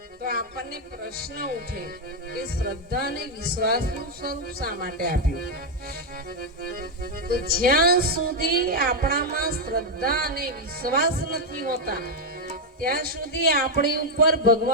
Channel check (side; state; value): both; normal; correlation 0.02